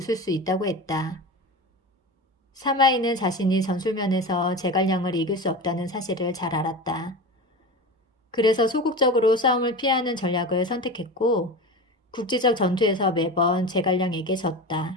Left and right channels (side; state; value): both; normal; correlation 0.28